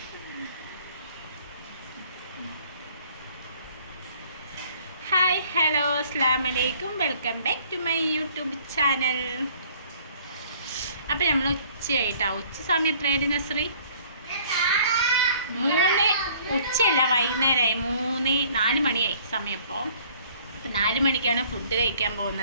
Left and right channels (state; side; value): inverted; both; correlation -0.56